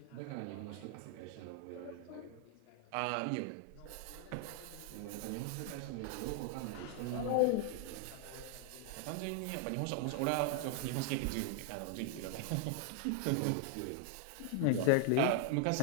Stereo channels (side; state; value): both; different; correlation 0.00